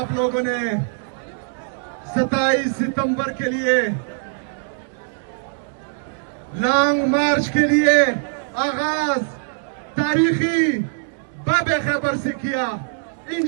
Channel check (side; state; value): left; silent; digital silence